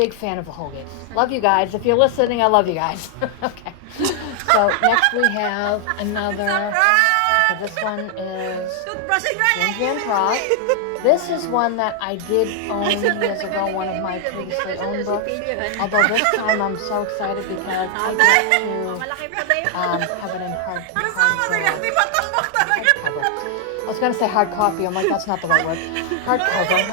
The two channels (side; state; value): both; different; correlation 0.00